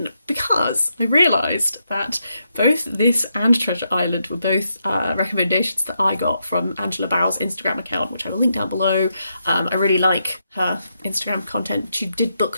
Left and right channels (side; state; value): both; inverted; correlation -0.82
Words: because I realised that both this and Treasure Island were both recommendations that I got from Angela Bauer's Instagram account, which I will link down below. I really like her Instagram content. She did